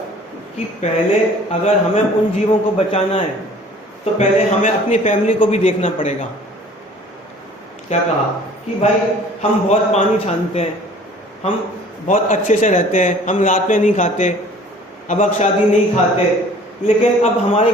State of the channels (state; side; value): normal; both; correlation 0.50